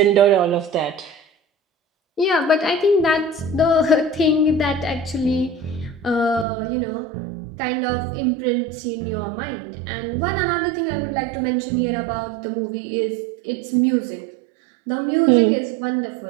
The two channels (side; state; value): left; drops out; at 6.5 s